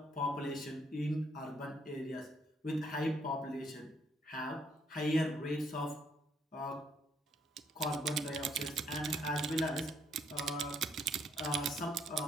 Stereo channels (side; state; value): both; normal; correlation 0.69